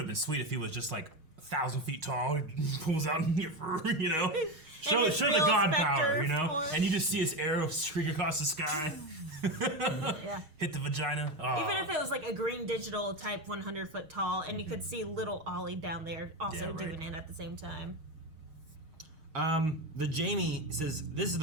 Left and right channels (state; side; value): late; left; 6.4 ms